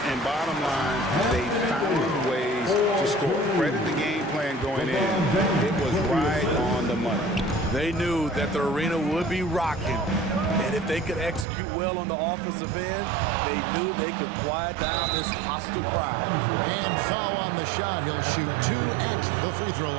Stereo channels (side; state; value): left; drops out; at 11.5 s